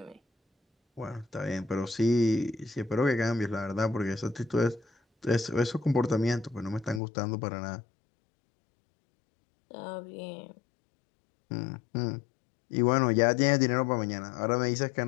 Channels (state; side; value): drops out; right; at 7.0 s